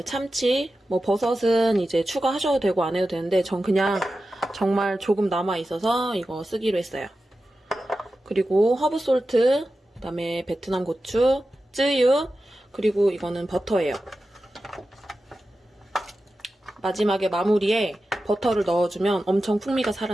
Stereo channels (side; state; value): both; normal; correlation 0.93